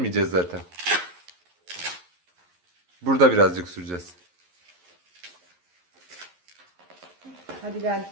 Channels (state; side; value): late; left; 11 ms